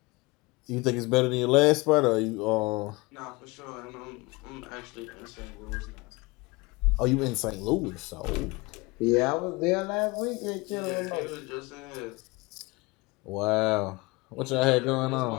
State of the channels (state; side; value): quieter; right; 24.3 dB